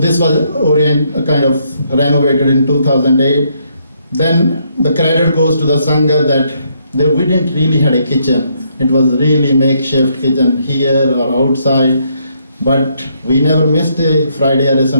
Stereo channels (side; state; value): both; inverted; correlation -0.73